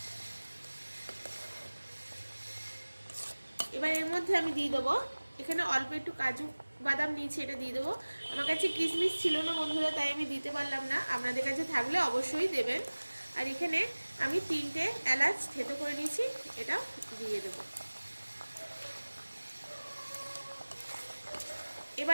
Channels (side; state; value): both; inverted; correlation -1.00